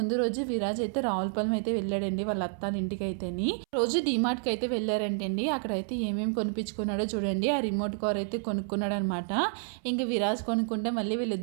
రోజు విరాజ్ అయితే రావులపాలెం అయితే వెళ్ళాడండి వాళ్ళ అత్తాల ఇంటికి అయితేని. రోజు డిమార్ట్కి అయితే వెళ్ళారంటండి. అక్కడైతే ఏమేమి కొనిపించుకున్నాడో చూడండి. ఆ రిమోట్ కార్ అయితే కొనుక్కున్నాడు అనమాట. ఇంకా విరాజ్ కొనుక్కుంటే మళ్ళీ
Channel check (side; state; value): left; silent; 58 dB below the other